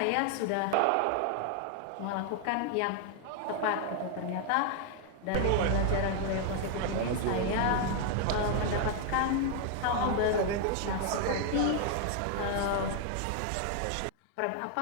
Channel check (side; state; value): both; different; correlation 0.00